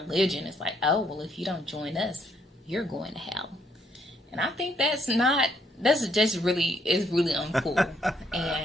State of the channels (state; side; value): normal; both; correlation 0.70